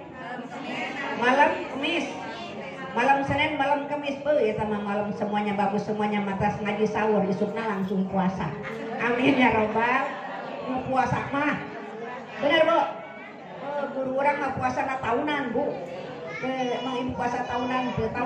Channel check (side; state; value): both; identical; correlation 1.00